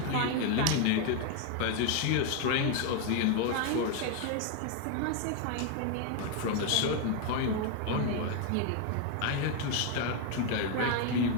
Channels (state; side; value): different; both; correlation 0.01